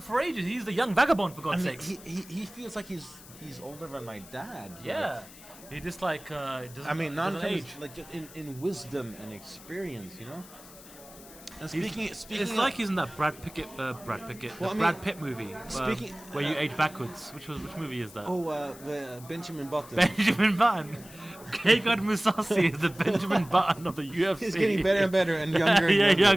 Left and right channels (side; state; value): left; noise; hiss, 19 dB below the sound